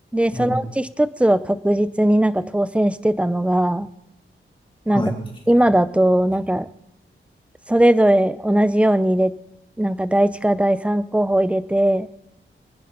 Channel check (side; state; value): both; normal; correlation 0.97